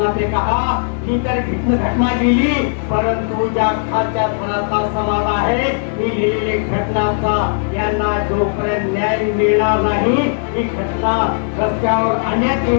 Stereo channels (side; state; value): right; silent; digital silence